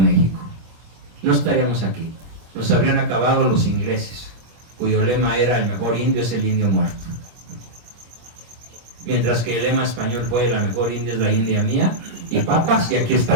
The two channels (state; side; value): late; left; 25 ms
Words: No estaríamos aquí. Nos habrían acabado los ingleses, cuyo lema era: el mejor indio es el indio muerto. Mientras que el lema español fue: la mejor india es la india mía, y papas, y aquí